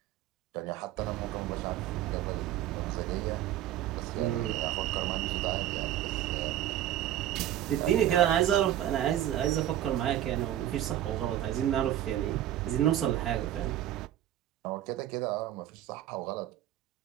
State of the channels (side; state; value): left; quieter; 12.3 dB